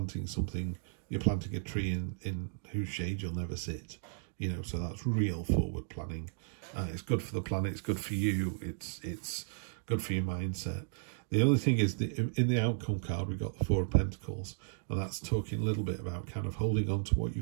something, you're planting a tree in whose shade you'll never sit, you know, so that's real forward planning. It's good for the planet, it's good for you, it's good for your mindset. The other thing is, in the outcome card, we've got the Four of Pentacles, and that's talking a little bit about kind of holding on to what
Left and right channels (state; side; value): silent; left; digital silence